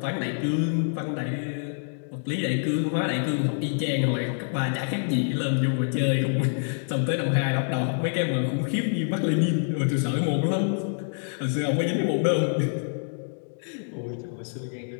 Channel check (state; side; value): silent; right; digital silence